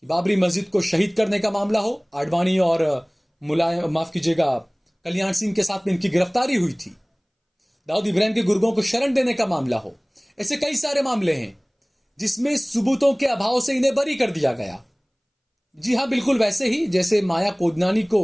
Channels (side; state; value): both; identical; correlation 1.00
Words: बाबरी मस्जिद को शहीद करने का मामला हो, आडवाणी और मुलायम, माफ कीजिएगा, कल्याण सिंह के साथ में इनकी गिरफ्तारी हुई थी, दाऊद इब्राहिम के गुर्गों को शरण देने का मामला हो, ऐसे कई सारे मामले हैं जिसमें सबूतों के अभाव से इन्हें बरी कर दिया गया। जी हां, बिल्कुल वैसे ही जैसे माया कोदनानी को